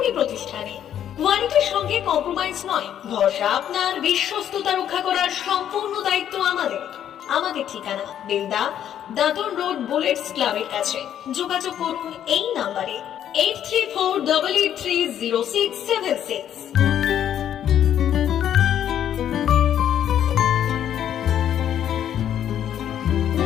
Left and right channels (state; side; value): quieter; right; 10.2 dB